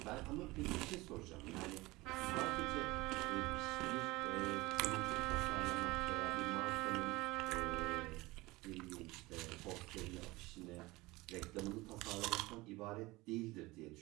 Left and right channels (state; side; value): quieter; left; 21.1 dB